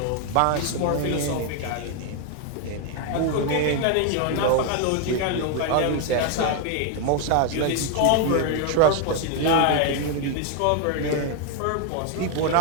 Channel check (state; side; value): different; both; correlation 0.00